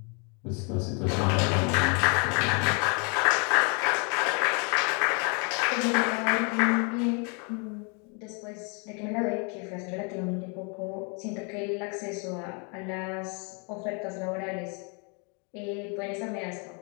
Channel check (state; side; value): quieter; right; 35.3 dB